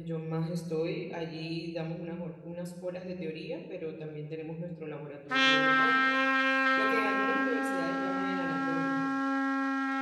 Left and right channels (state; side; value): identical; both; correlation 1.00